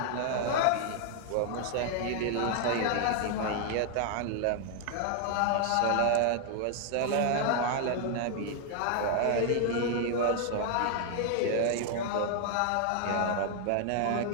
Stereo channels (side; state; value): both; different; correlation 0.00